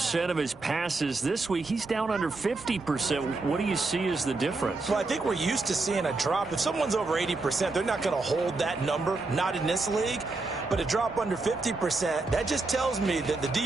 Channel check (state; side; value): quieter; left; 3.5 dB